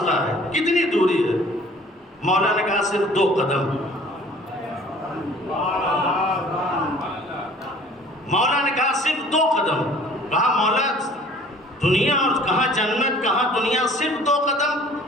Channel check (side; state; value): both; normal; correlation 0.51